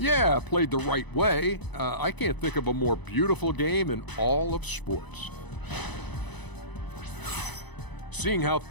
played the right way. I can't think of a more beautiful game in all of sports. Seeing how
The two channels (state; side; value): late; right; 1.0 ms